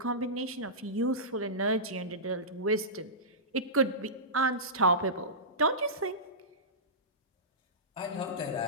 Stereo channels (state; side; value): normal; both; correlation -0.19